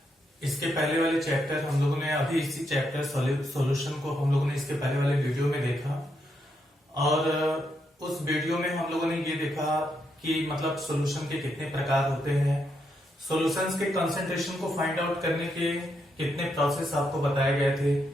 इसके पहले वाले चैप्टर हम लोगों ने अभी इसी चैप्टर सॉल्यूशन को हम लोगों ने इसके पहले वाले वीडियो में देखा और उस वीडियो में हम लोगों ने ये देखा कि मतलब सॉल्यूशन के कितने प्रकार होते हैं, सॉल्यूशंस के कंसंट्रेशन को फाइंड आउट करने के कितने प्रोसेस आपको बताए गए थे।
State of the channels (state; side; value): normal; both; correlation 0.80